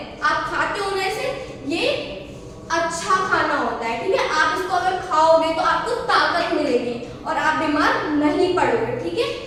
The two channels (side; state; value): both; identical; correlation 1.00